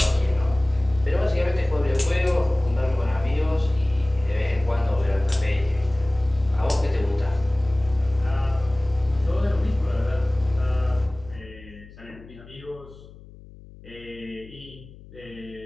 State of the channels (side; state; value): left; noise; hum, 20 dB below the sound